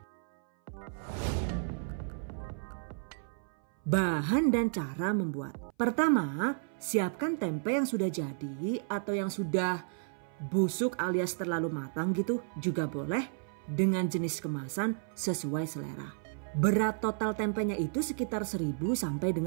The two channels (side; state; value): left; silent; 56 dB below the other